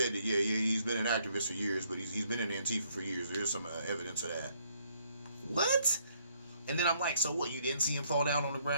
that, yeah, he's been an activist for years, but he's been in Antifa for years. There's some evidence of that. What? And then I'm like, so what? You didn't see him fall down on the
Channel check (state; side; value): inverted; both; correlation -0.68